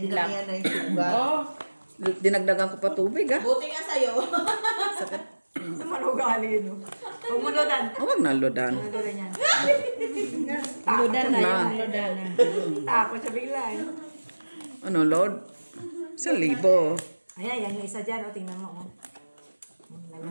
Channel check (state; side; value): inverted; both; correlation -1.00